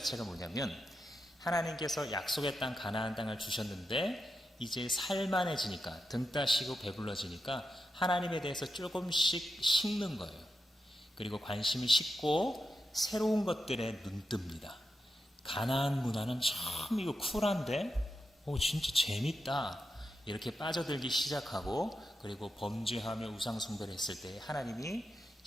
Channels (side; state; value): both; normal; correlation 0.88